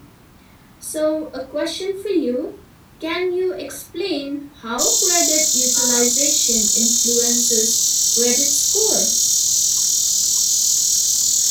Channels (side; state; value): both; identical; correlation 1.00